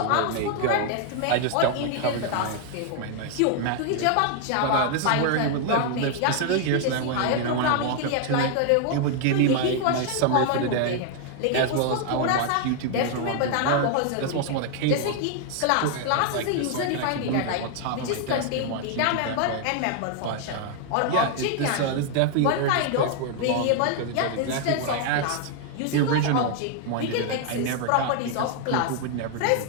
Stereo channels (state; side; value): different; both; correlation 0.00